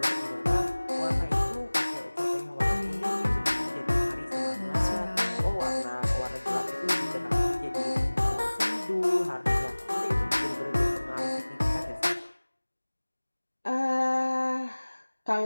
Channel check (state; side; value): inverted; both; correlation -1.00